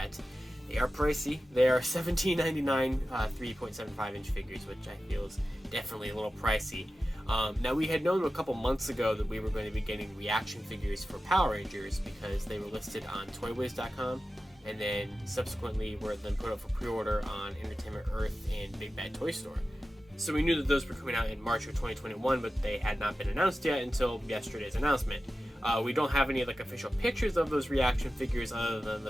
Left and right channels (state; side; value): normal; both; correlation 0.94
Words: They are pricey. They are $17.99 3.75 inch figures, which I feel is definitely a little pricey. Now, we had known a couple months ago that we were going to be getting reaction figures for Power Rangers because they were listed on ToyWiz.com, and then subsequently were then put up for pre-order on Entertainment Earth and Big Bad Toy Store. So we knew that those were coming out in March of 2021, but they had not been announced yet until yesterday's announcement. We don't have any official pictures of those reaction figures other than